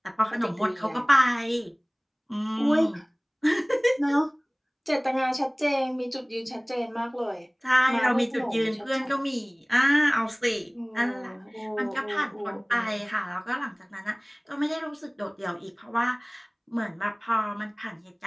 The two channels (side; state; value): both; identical; correlation 1.00